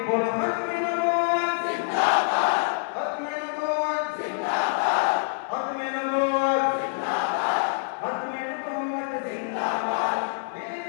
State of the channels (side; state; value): right; silent; digital silence